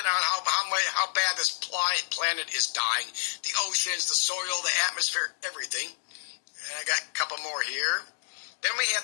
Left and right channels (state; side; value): silent; right; digital silence